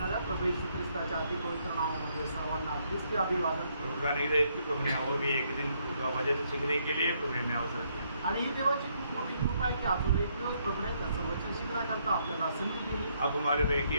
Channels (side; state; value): both; inverted; correlation -0.73